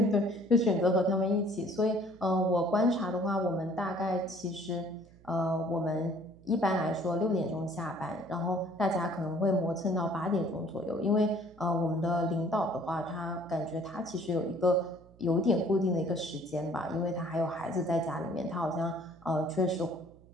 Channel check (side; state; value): right; noise; hum, 25 dB below the sound